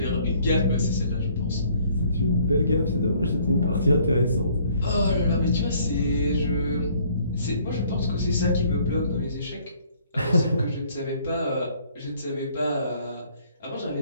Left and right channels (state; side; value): inverted; both; correlation -0.61